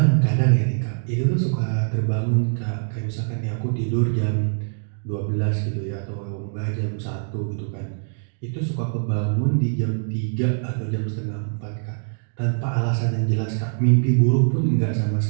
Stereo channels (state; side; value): silent; left; digital silence